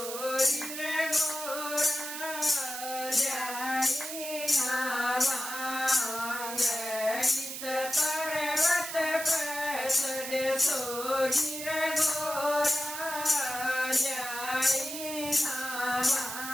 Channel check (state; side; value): noise; right; hiss, 7 dB below the sound